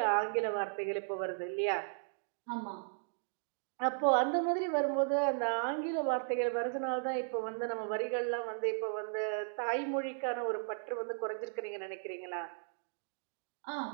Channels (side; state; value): left; silent; digital silence